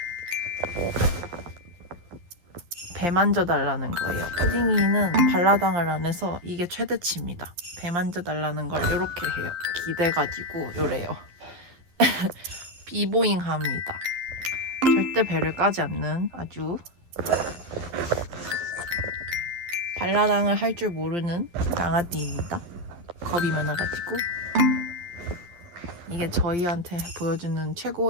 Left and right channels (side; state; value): left; late; 11 ms